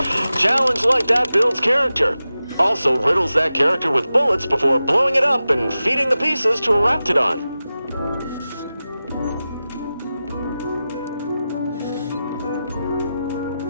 Challenge like that builds character. Also riddles that character with bullets before blowing it up and feeding the pieces to a Raptidon.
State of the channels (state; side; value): inverted; both; correlation -0.94